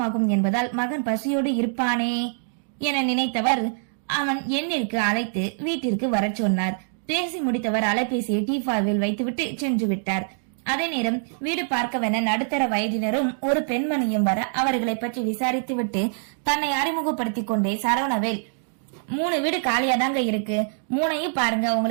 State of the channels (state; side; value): silent; left; digital silence